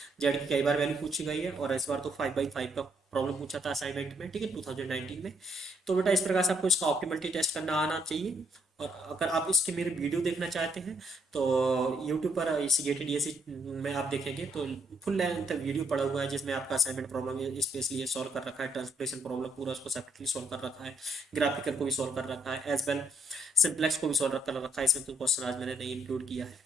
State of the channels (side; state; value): both; normal; correlation 0.72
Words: Z की कई बार वैल्यू पूछी गई है, और इस बार तो 5/5 का प्रॉब्लम पूछा था असाइनमेंट में, ठीक है, 2019 में। तो बेटा इस प्रकार से आपको इसका ऑप्टिमलिटी टेस्ट करना आना चाहिए। और अगर आप इसके मेरे वीडियो देखना चाहते हैं तो यूट्यूब पर इसी गेटेड डीएससी में आप देखेंगे तो फुल लेंथ वीडियो पड़ा हुआ है, जिसमें आपका असाइनमेंट प्रॉब्लम स्पेशली ये सॉल्व कर रखा है, ट्रांसलेशन प्रॉब्लम पूरा उसको सेपरेटली सॉल्व कर रखा है, ग्राफिकल को भी सॉल्व कर रखा है, एज वेल सिंप्लेक्स को भी सॉल्व कर रखा है। इसमें कोई क्वेश्चन आज मैंने नहीं इंक्लूड किया है,